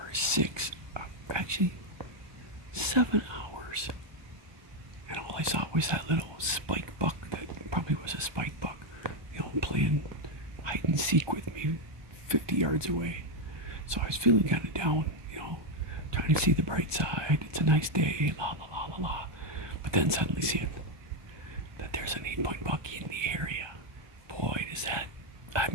7 hours. And all I saw was that little spike buck that probably was a spike buck, playing hide and seek with me 50 yards away. So I was feeling kind of down, trying to see the bright side. It's a nice day, la la la la la. But then suddenly seeing that there's an 8-point buck in the area. Boy,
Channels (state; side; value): late; left; 1.2 ms